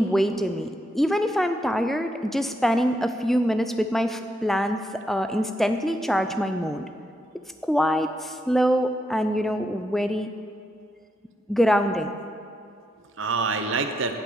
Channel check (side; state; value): both; normal; correlation 0.81